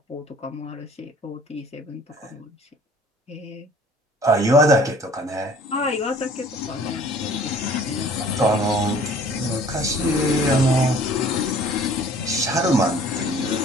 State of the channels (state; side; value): normal; both; correlation 0.52